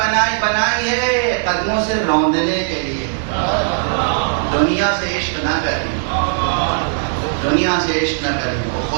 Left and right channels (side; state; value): left; silent; digital silence